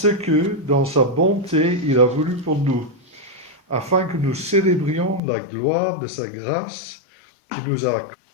que, dans sa bonté, il a voulu pour nous, afin que nous célébrions la gloire de sa grâce qu'il nous a accordée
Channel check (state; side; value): drops out; right; at 5.2 s